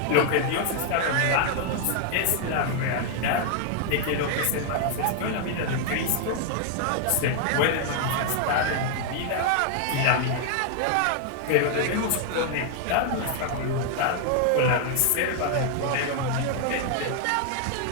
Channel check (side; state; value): both; different; correlation 0.00